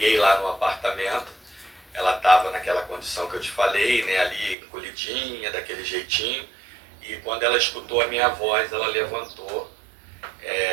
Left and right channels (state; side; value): drops out; left; at 4.5 s